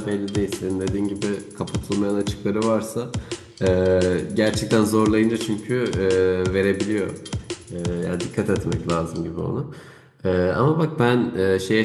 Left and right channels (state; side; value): identical; both; correlation 1.00